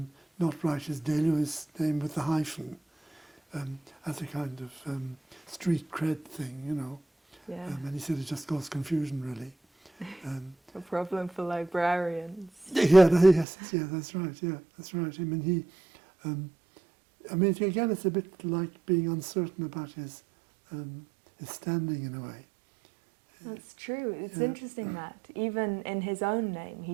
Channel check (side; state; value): left; drops out; at 13.5 s